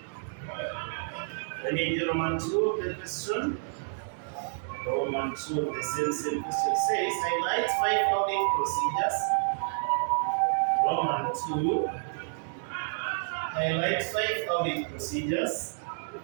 Let me do Roman 2, the question. Roman 2, the same question says, highlight 5 audit procedures. Roman 2, highlight 5 audit procedures.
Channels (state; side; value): silent; left; 58 dB below the other